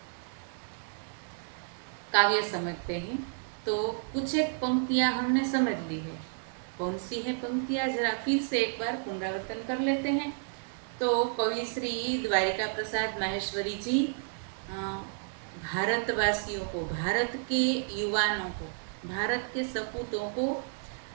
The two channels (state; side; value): silent; left; 57 dB below the other